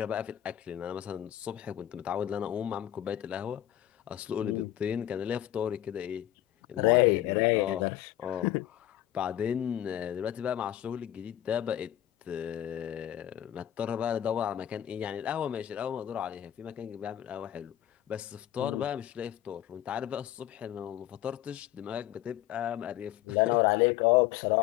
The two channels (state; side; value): quieter; right; 12.5 dB